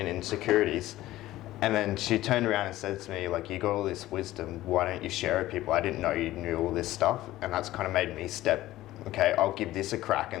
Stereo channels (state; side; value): quieter; right; 15.8 dB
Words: insecurities. And then she turned around and said to me, like, you got all this wisdom, why don't you share it with people? I didn't know you knew all this stuff. And that's kind of made me step, okay, I'll give this a crack,